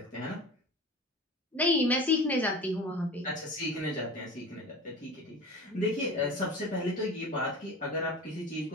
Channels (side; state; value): both; normal; correlation 0.34